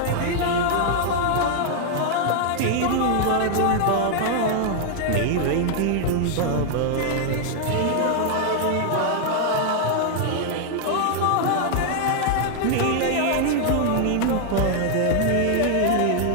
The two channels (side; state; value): both; different; correlation 0.00